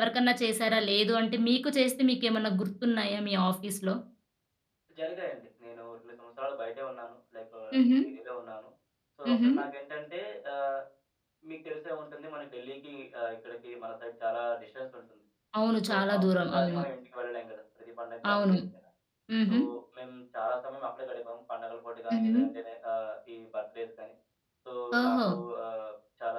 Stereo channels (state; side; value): identical; both; correlation 1.00